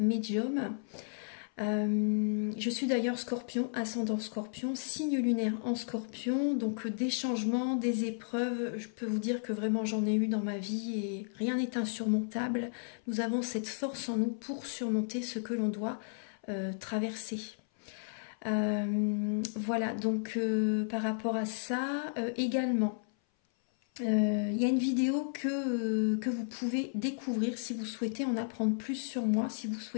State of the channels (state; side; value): silent; right; 56 dB below the other